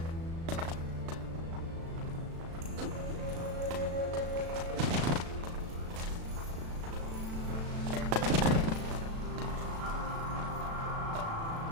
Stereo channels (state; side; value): late; left; 36 ms